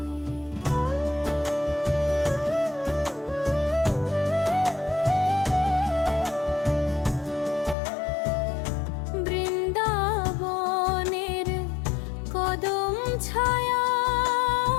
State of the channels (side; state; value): right; drops out; at 7.8 s